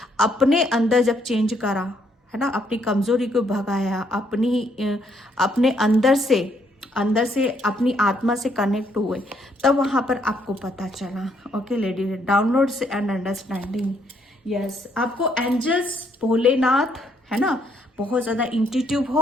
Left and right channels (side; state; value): both; normal; correlation 0.71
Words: अपने अंदर जब चेंज करा है ना, अपनी कमजोरी को भगाया, अपने अंदर से अपनी आत्मा से कनेक्ट हुए, तब वहां पर आपको पता चला, okay lady, downloads and understanding. Yes, आपको एंजल्स, भोलेनाथ है ना, बहुत ज़्यादा इंट्यूटिव